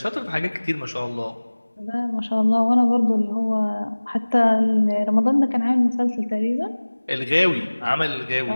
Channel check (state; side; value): inverted; both; correlation -1.00